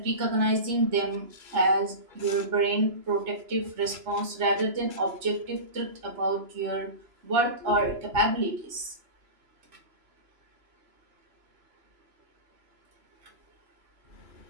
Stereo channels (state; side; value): late; left; 3.0 ms